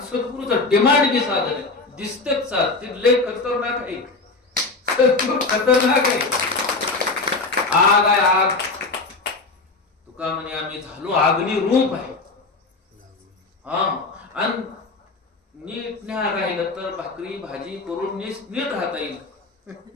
सद्गुरूचं डिमांड बी साधन आहे. दिसतेच साध ते लय खतरनाक आहे. सद्गुरू खतरनाक आहे. आग आहे आग. तुका म्हणे आम्ही झालो अग्नी रूप आहे. हा आणि नीट न्या राहिलं तर भाकरी भाजी करून नीट राहता येईल.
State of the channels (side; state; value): right; quieter; 3.7 dB